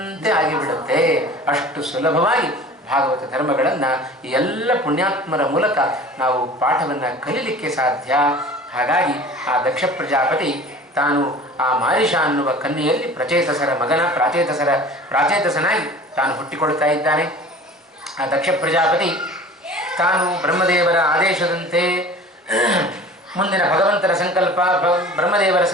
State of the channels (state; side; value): normal; both; correlation 0.42